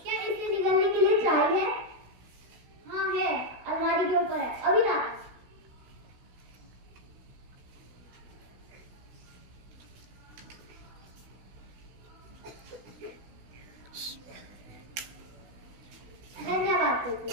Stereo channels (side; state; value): left; late; 16 ms